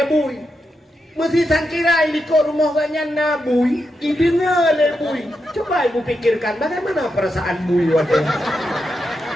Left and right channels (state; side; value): normal; both; correlation 0.86